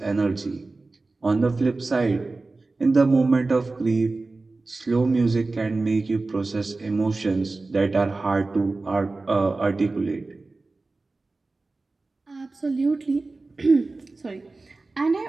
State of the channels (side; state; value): left; quieter; 3.5 dB